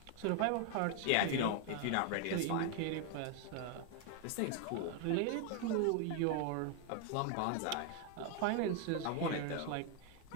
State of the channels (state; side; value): different; both; correlation 0.01